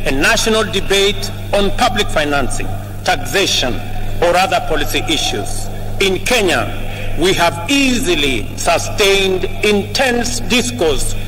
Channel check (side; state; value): both; identical; correlation 1.00